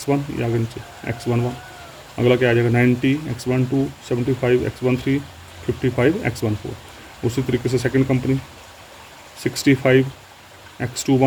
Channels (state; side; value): identical; both; correlation 1.00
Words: ये आगे नीचे X11। अगला क्या आ जाएगा 90 X12, 75 X13, 55 X14। उसी तरीके से second company 65